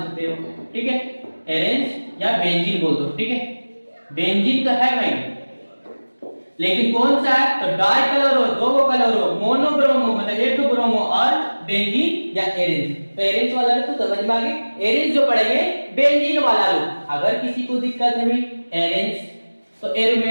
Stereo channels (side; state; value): both; inverted; correlation -1.00